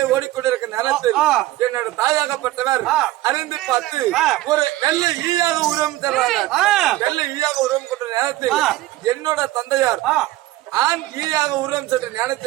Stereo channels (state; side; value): quieter; left; 16.5 dB